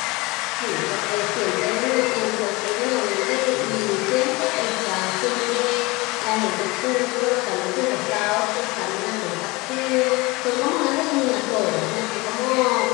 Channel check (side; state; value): right; quieter; 23.5 dB